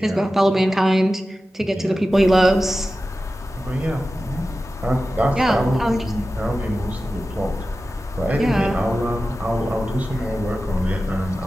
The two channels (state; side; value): normal; both; correlation 0.94